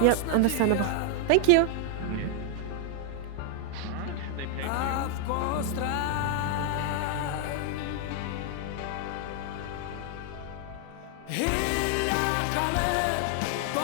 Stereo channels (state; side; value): different; both; correlation 0.00